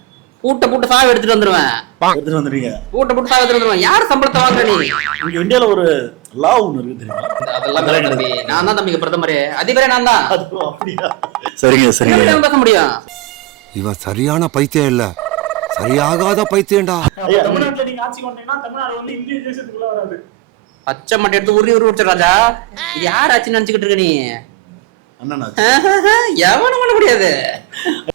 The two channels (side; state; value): left; quieter; 18.9 dB